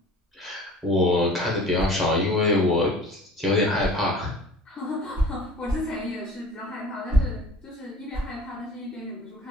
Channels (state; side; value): normal; both; correlation 0.45